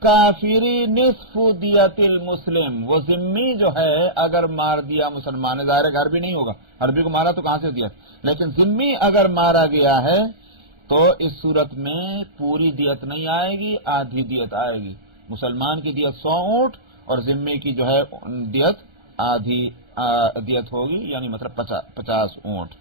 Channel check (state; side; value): late; left; 1.3 ms